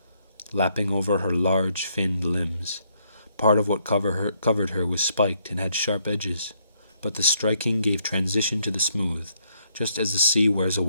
lapping over her large, finned limbs. Part of what covered her was spiked and had sharp edges, but the striking gave transition to the smooth, just as the sea wears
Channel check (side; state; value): both; inverted; correlation -0.73